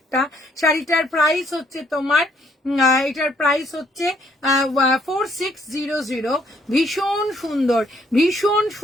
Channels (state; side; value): normal; both; correlation 0.67